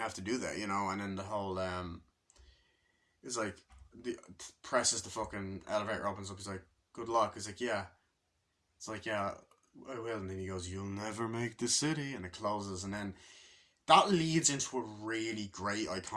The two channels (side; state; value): both; identical; correlation 1.00